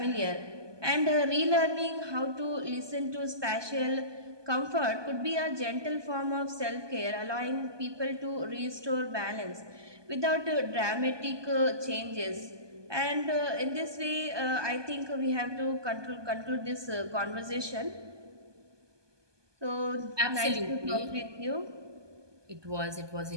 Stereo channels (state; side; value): late; left; 1.2 ms